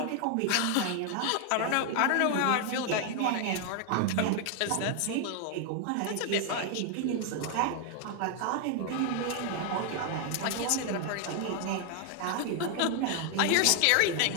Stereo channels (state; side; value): different; both; correlation 0.00